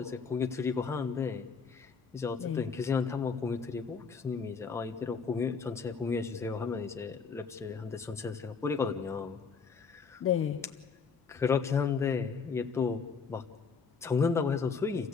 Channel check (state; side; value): quieter; right; 5.4 dB